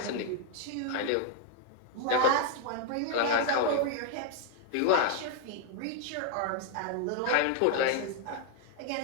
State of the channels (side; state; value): both; different; correlation 0.00